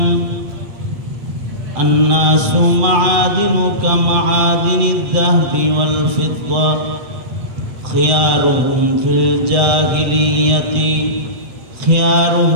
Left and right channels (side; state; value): left; late; 7.9 ms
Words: الناس معادن كمعادن الذهب والفضة خيارهم في الجاهلية